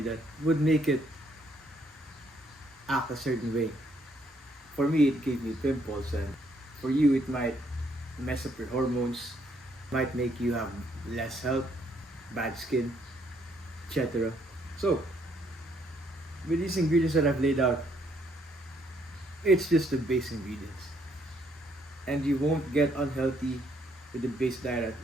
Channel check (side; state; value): both; normal; correlation 0.70